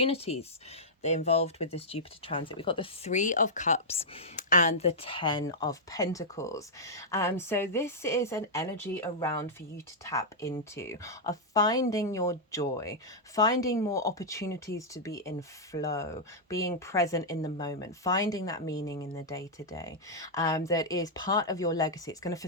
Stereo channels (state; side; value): normal; both; correlation -0.08